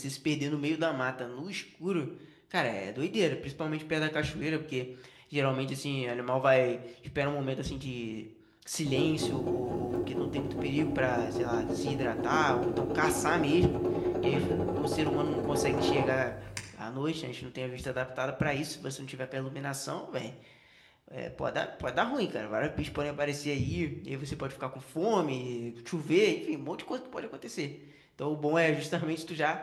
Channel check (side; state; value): both; identical; correlation 1.00